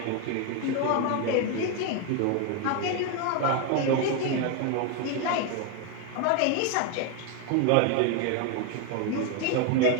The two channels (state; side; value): different; both; correlation 0.01